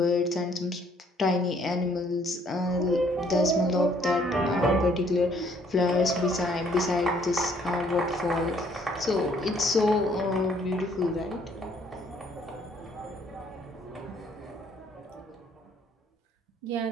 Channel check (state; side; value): normal; both; correlation 0.64